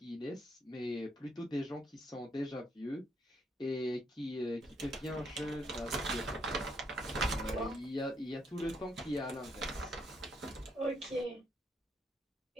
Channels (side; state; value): both; normal; correlation 0.74